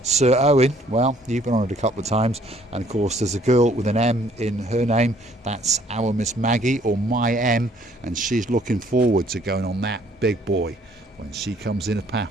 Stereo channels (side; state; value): both; normal; correlation 0.61